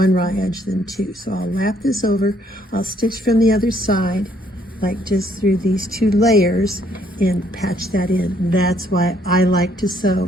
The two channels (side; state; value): both; normal; correlation 0.67